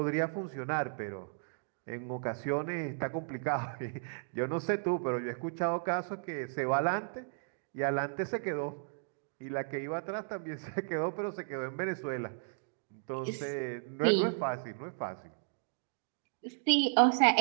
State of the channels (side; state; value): left; silent; digital silence